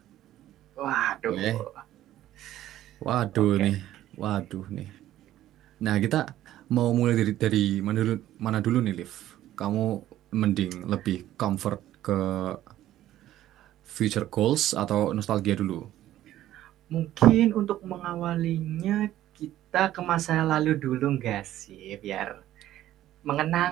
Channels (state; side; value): quieter; left; 13.4 dB